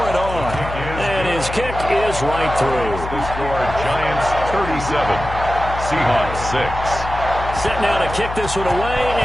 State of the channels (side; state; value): left; noise; hum, 8 dB below the sound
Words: it on. And his kick is right through. The score, Giants 37. Seahawks 6. Set now to kick this one away,